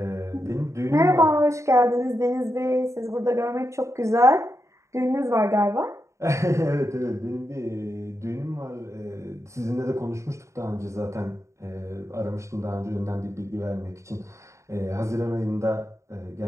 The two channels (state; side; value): late; left; 0.14 ms